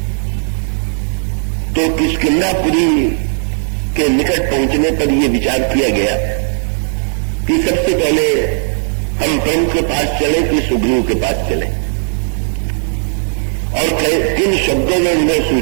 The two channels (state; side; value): silent; left; digital silence